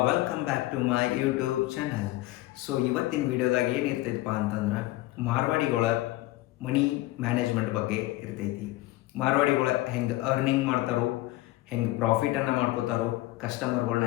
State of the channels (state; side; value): quieter; right; 17.8 dB